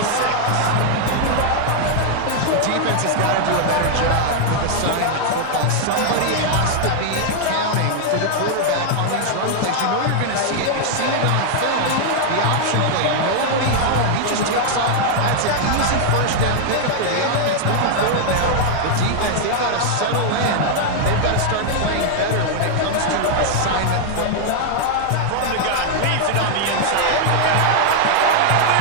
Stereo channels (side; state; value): both; different; correlation 0.00